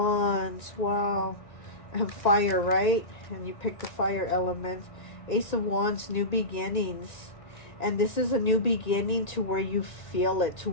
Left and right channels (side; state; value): right; late; 1.9 ms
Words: Wow. And fire, right? And you picked the fire element. Ace of Wands, new beginnings. And this is a new beginning to where you feel it, to